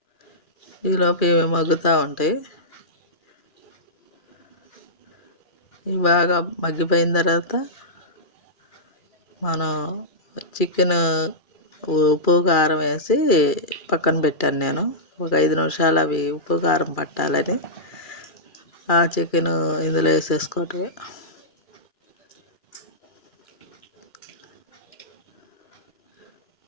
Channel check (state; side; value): late; right; 2.4 ms